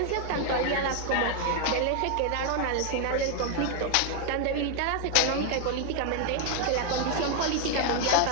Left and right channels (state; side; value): different; both; correlation 0.00